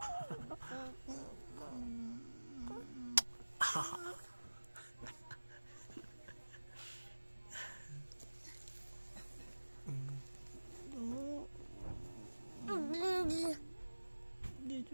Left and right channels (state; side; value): inverted; both; correlation -1.00